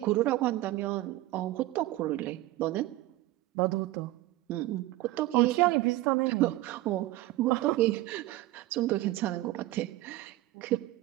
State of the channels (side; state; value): left; quieter; 17.2 dB